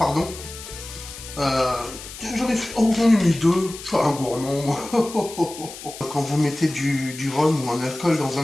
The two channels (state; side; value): noise; left; hiss, 13 dB below the sound